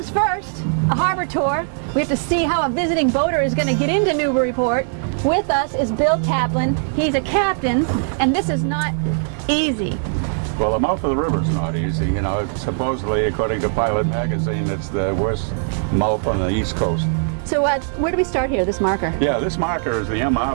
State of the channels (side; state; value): left; silent; digital silence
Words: first, a harbor tour. We have to see how a visiting boater is going to get into Newburyport. With us is Bill Taplin. He's a captain, and this is not easy. Well, the mouth of the river is not easy. You know, supposedly, according to Pilot Magazine, it's the worst mouth on the East Coast. So where do we start here, this marker? Yeah, this marker is the